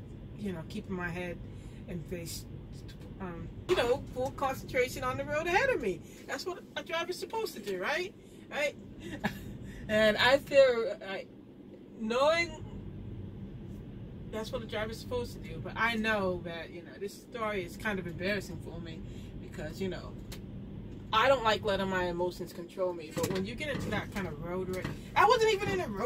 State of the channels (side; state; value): both; identical; correlation 1.00